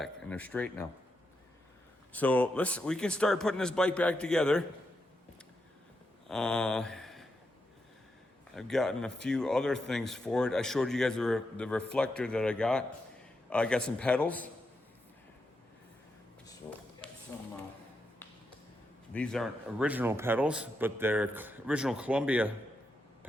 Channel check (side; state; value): both; normal; correlation 0.84